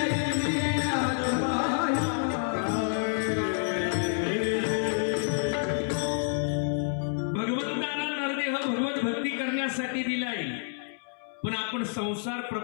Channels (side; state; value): right; silent; 58 dB below the other